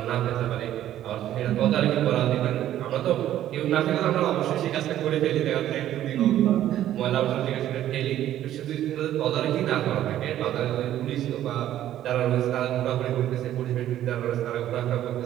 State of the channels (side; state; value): left; quieter; 12.3 dB